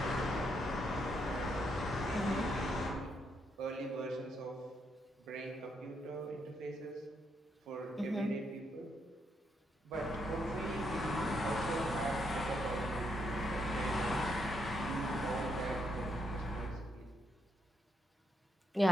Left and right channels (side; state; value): both; normal; correlation 0.77